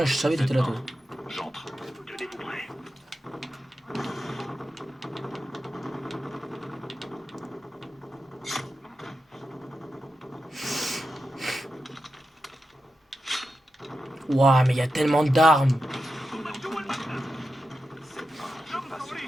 je savais que t'étais là, toi. J'entre. Tenez-vous prêts. Ouah, mais il y a tellement d'armes.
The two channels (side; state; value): both; normal; correlation 0.89